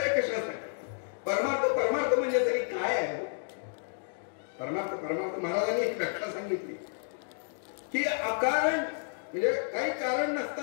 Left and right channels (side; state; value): right; silent; 57 dB below the other